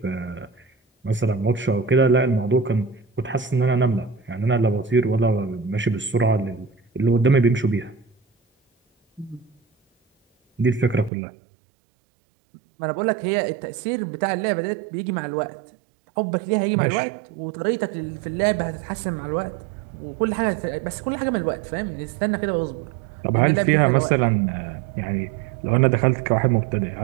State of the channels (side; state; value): left; drops out; at 11.1 s